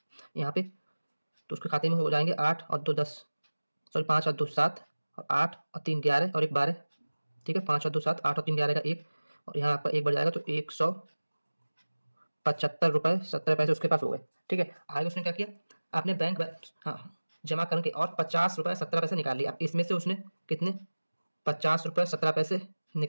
यहाँ पे? तो उसके खाते में हो जाएंगे 8 और 2 10, सॉरी 5 और 2 7 और 8 और 3 11 और 1 12, ठीक है, 5 और 2 7, 8 और 3 11 का 1, और यहाँ आपका 1 बढ़ जाएगा तो 175 रुपये 70 पैसे उसके पास हो गए, ठीक है। आगे उसने क्या किया, आपने बैंक हाँ जमा करके और 50 रुपये 17 पैसे निकाल लिए। अब इसमें से उसने कितने 50 रुपये 17 पैसे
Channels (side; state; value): both; inverted; correlation -1.00